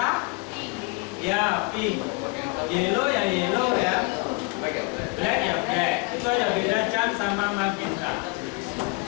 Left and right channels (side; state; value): right; quieter; 28.5 dB